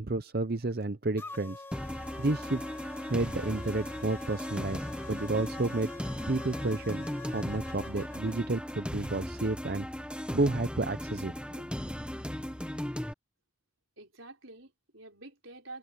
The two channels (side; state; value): both; normal; correlation 0.56